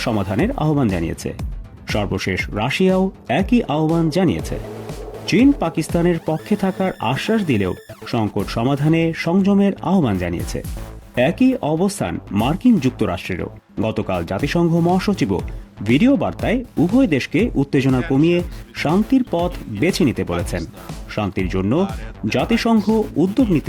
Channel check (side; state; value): both; identical; correlation 1.00